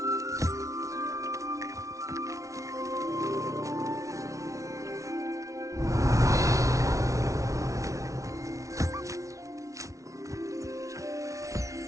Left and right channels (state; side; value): late; left; 0.15 ms